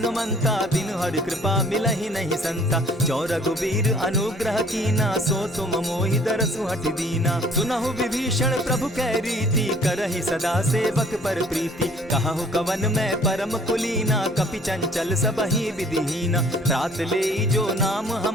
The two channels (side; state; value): both; normal; correlation 0.55